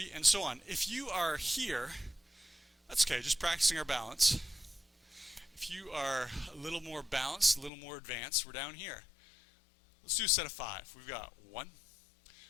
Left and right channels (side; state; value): right; drops out; at 7.7 s